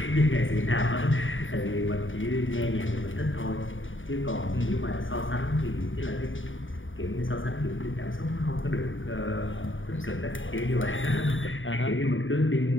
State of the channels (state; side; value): late; right; 0.57 ms